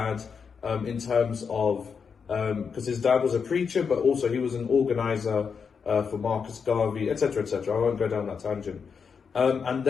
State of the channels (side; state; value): right; quieter; 6.1 dB